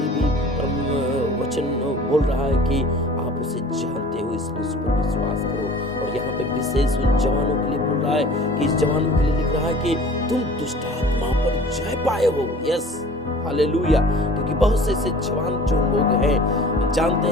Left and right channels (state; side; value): normal; both; correlation 0.45